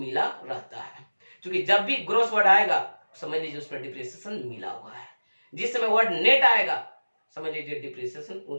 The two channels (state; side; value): inverted; both; correlation -1.00